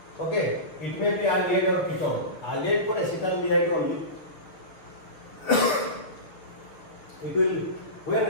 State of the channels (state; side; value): late; right; 6.8 ms